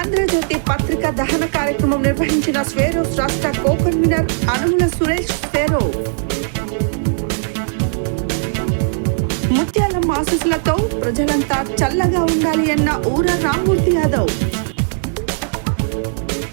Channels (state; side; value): silent; left; digital silence